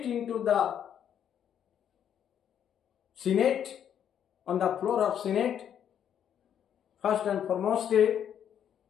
into the Senate, on the floor of Senate, first and foremost,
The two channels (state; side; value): quieter; right; 9.2 dB